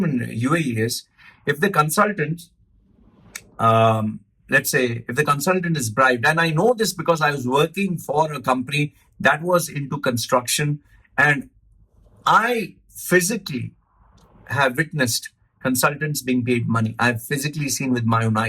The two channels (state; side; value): identical; both; correlation 1.00